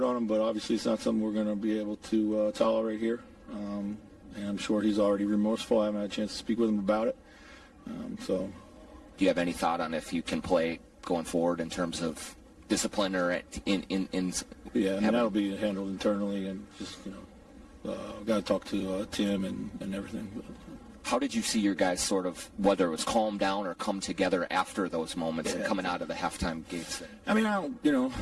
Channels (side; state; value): both; identical; correlation 1.00